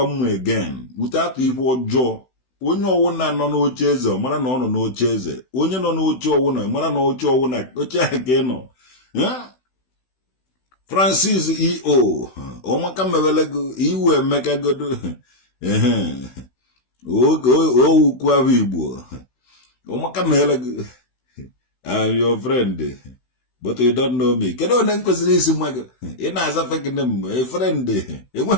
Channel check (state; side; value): late; right; 16 ms